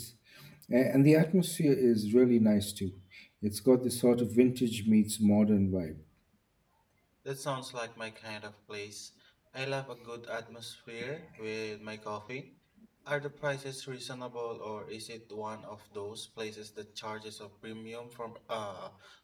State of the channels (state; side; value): identical; both; correlation 1.00